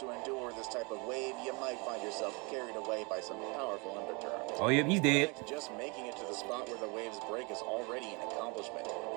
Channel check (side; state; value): left; quieter; 29.5 dB